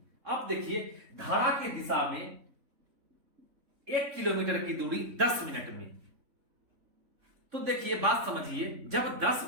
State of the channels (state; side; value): late; left; 3.6 ms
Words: अब देखिए धारा की दिशा में 1 किलोमीटर की दूरी 10 मिनट में, तो देखिए बात समझिए, जब 10